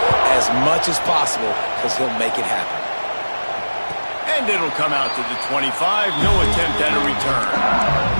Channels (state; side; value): inverted; both; correlation -1.00